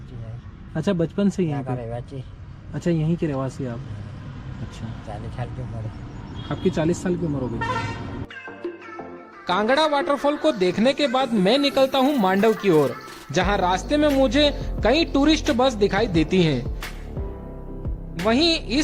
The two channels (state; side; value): identical; both; correlation 1.00